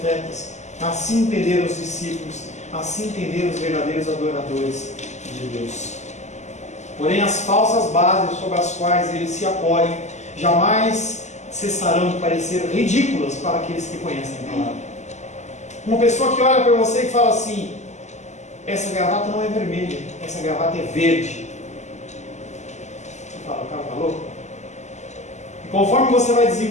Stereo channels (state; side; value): late; right; 0.33 ms